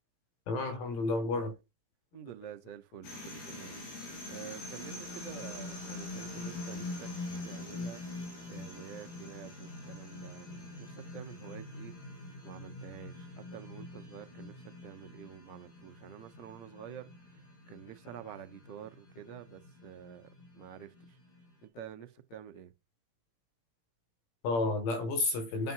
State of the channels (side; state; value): right; late; 17 ms